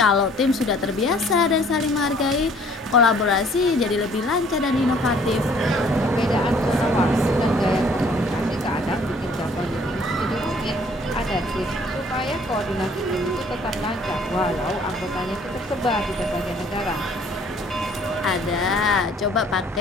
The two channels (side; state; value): both; normal; correlation 0.57